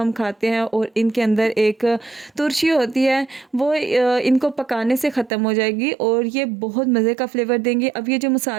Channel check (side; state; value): left; drops out; at 5.3 s